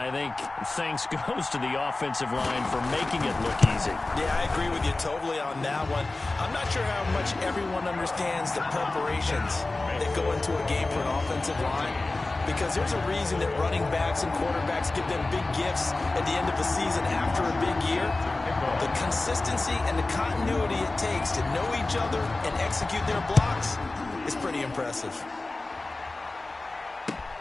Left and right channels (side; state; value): right; quieter; 3.1 dB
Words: think thanks goes to the offensive line for making it look easy. Yeah, I agree with you totally on that one. I'm not sure how much everyone understands the preparations that go into a game for an offensive line, because there's a reason that running backs and quarterbacks give them big gifts at the end of the season after a big year. The consistency and the continuity it takes to know each other and execute their blocks is pretty impressive.